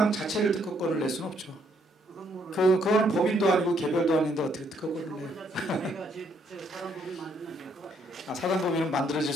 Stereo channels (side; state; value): both; normal; correlation 0.70